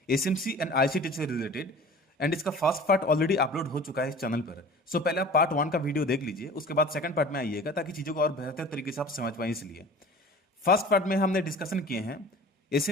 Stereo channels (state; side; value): normal; both; correlation 0.42